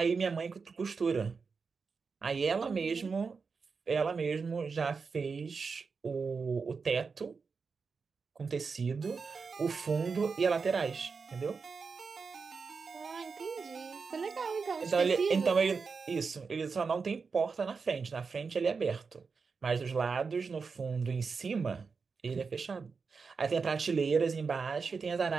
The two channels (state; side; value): quieter; left; 5.1 dB